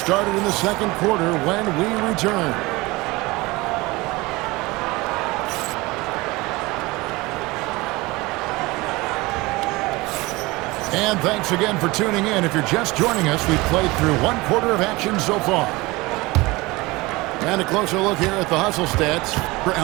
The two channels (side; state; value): left; quieter; 22.1 dB